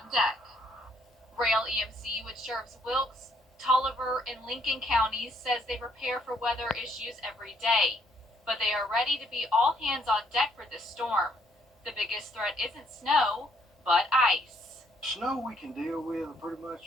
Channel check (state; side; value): normal; both; correlation 0.68